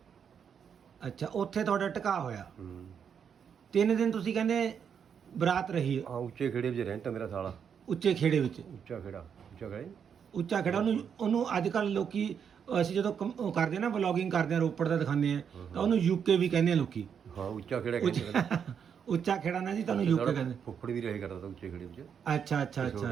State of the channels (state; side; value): quieter; left; 7.5 dB